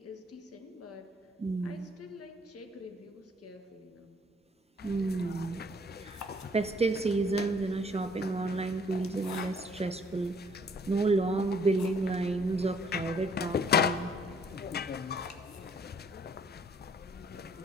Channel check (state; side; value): normal; both; correlation 0.61